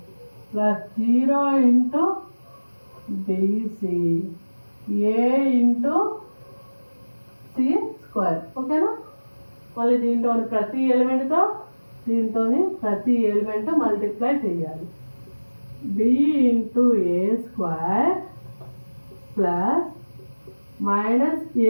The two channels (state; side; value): inverted; both; correlation -1.00